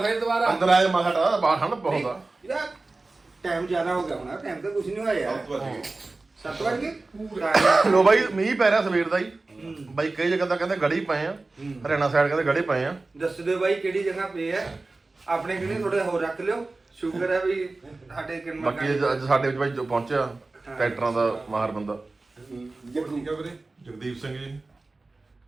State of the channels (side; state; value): left; quieter; 3.4 dB